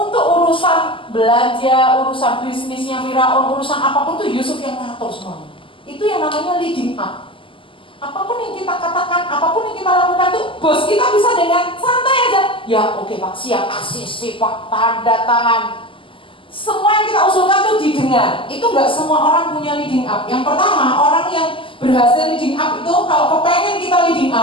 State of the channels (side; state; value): right; late; 0.25 ms